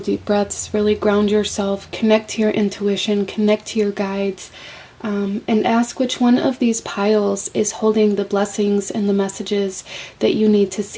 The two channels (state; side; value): identical; both; correlation 1.00